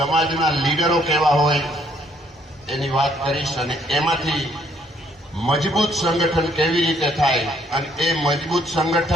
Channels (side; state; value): both; normal; correlation 0.67